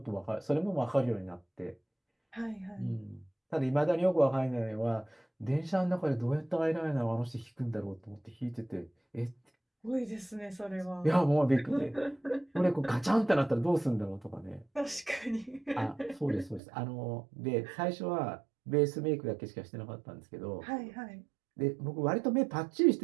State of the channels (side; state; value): left; drops out; at 16.6 s